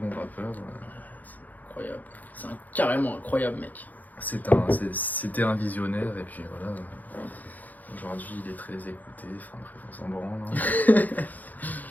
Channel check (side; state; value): right; late; 0.081 ms